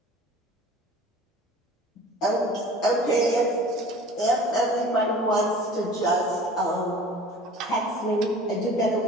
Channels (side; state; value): both; normal; correlation 0.44